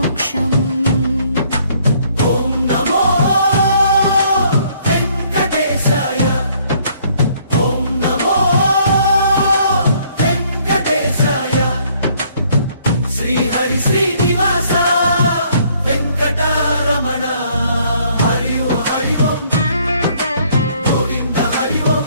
ఓం నమో వెంకటేశాయ ఓం నమో వెంకటేశాయ శ్రీ హరి శ్రీనివాస వెంకటరమణ హరి ఓం గోవింద హరి ఓం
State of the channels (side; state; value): both; inverted; correlation -0.64